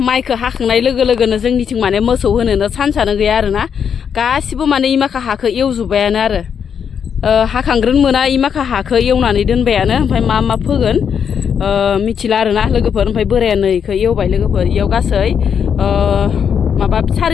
माइखौ हाखांनाय लोगोनो जोंनिथिं माने मोसौ होनोनो सान्सआनो गैया आरोना गासिबो माने इमाखा हाखौ एवजोब्बायानो आरो हाखांग्रोन मोना इमाखा हाखौ एवनानै दोनबायानो ओमफ्राय मा फोगोन मिथिला आरोना लोगोफोर ओमफ्राय बोराया नैखौ एवबाय लोगोफोर इयाव गासै माबा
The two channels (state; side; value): quieter; right; 7.5 dB